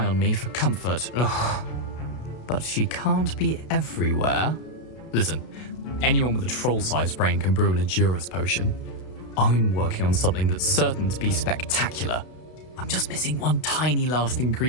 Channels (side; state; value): right; late; 32 ms